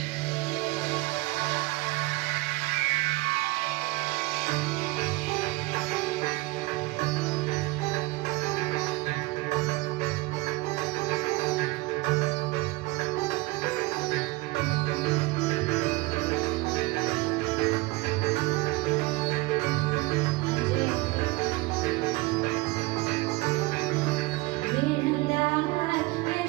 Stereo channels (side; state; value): left; quieter; 22.3 dB